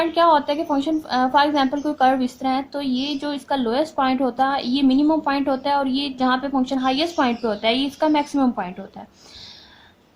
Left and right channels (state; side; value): identical; both; correlation 1.00